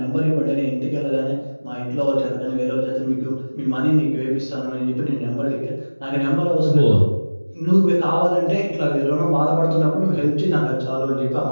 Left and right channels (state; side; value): inverted; both; correlation -1.00